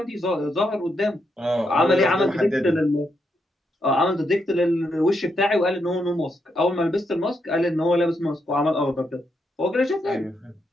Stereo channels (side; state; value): both; normal; correlation 0.80